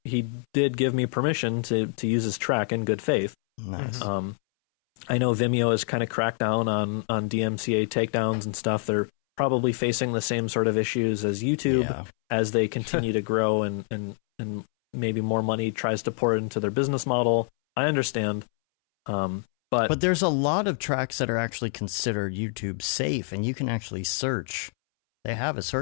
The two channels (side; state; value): right; silent; 61 dB below the other